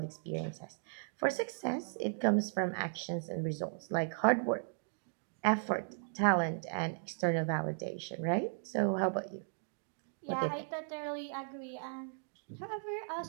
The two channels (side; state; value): left; silent; digital silence